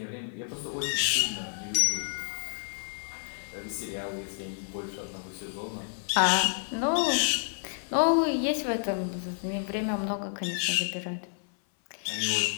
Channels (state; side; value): silent; right; 56 dB below the other